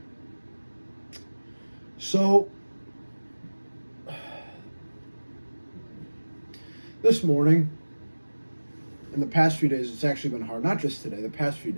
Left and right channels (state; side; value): inverted; both; correlation -1.00